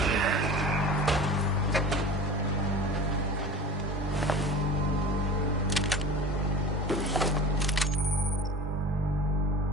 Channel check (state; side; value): normal; both; correlation 0.36